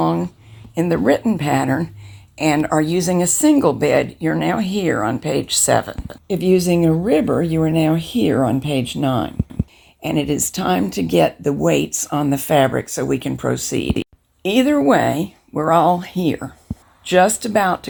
in the written pattern and are using a single bed, you're now here on page 7. If using a ribber, you are now here on page 9. And it is time to get the weights on the fabric so we can proceed. Either way, we're all here, just about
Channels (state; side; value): identical; both; correlation 1.00